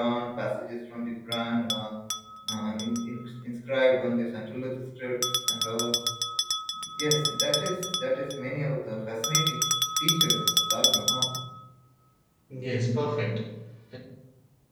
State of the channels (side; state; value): both; identical; correlation 1.00